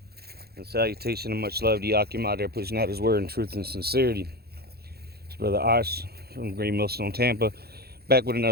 And salutation and much love to Yakim out there pushing out his word in truth and sincerity. It's Brother Ash from Great Millstone, Tampa. Back with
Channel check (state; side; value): late; left; 0.46 ms